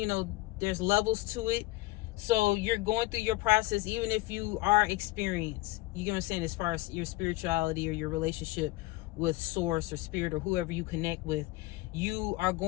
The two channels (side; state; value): right; quieter; 19.5 dB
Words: levels to it. So you're going through your process, even if you are experienced. You get what I'm saying? As far as your spirituality or your relationship with source or spirit or whoever you connect with, you are